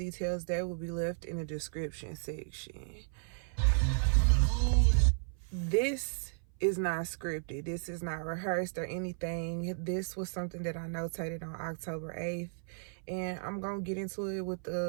that will be left in the description section. This is not scripted. This is not rehearsed or anything. This was something that I notated on October 8th. And I'm going to get into it with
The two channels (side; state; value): left; silent; 55 dB below the other